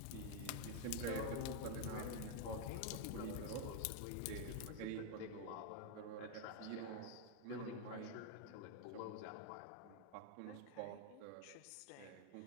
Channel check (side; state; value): both; different; correlation 0.00